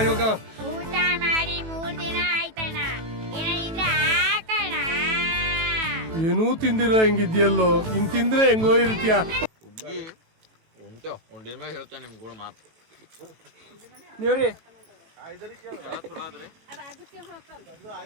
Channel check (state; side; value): late; left; 18 ms